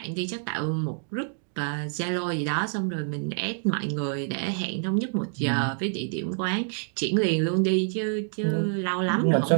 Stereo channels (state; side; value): silent; left; 58 dB below the other